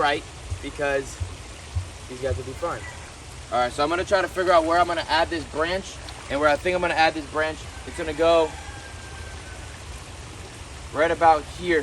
because these guys will be fine. All right, so I'm gonna try to figure out where I'm gonna add this branch, and where I think I'm gonna add this branch, it's gonna go right about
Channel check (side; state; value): both; identical; correlation 1.00